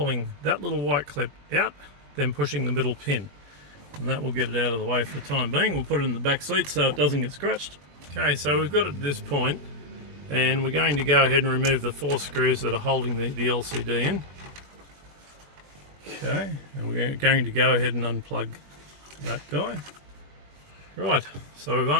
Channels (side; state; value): left; late; 21 ms